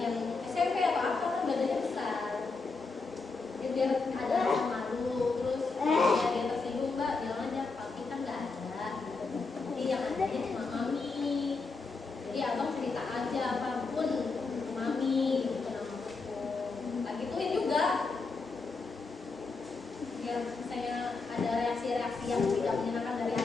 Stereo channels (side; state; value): right; quieter; 4.1 dB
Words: SMP atau apa kan badannya besar ya, biar ada rasa malu. Terus ya dia tersinggung mbak, bilang aja papi kan nggak ada gitu. Jadi yang ada cuma mami. Jadi abang cerita aja apapun ke mami gitu namaku. Tak gituin juga. Biar misalnya ada reaksi-reaksi yang tidak menyenangkan dari